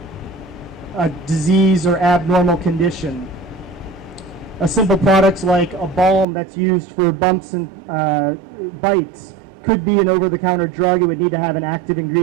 a disease or abnormal condition. A simple product like a balm that's used for bumps and bites could be an over-the-counter drug. It would need to have an active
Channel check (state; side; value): drops out; left; at 6.2 s